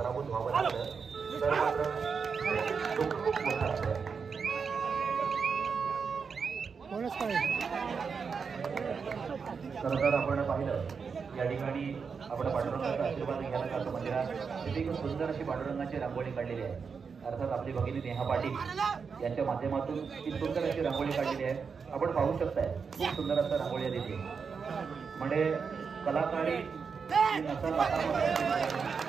व्हावं लागलं तर मात्र दुःख खूप मोठं असतं. खरं तर आपण पाहिलं या ठिकाणी आपण पांडुरंगाचा आशीर्वाद घ्यायला जातो मंदिरात. तिथे एक सुंदर अशी पांडुरंगाची रांगोळी काढलेली आहे. अर्थात आपली भगिनी नेहा पाटील यांच्या माध्यमातून ती सुंदर अशी रांगोळी काढलेली आहे. आपण पाहू शकताय खूप सुंदर असं रांगोळी आहे तिथे. म्हणजे कलाकारी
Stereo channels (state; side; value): quieter; left; 5.7 dB